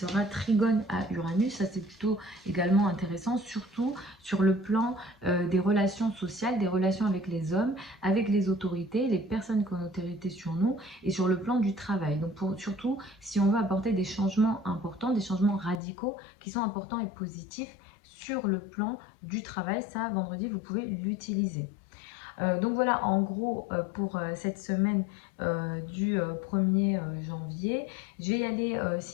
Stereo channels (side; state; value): right; drops out; at 15.8 s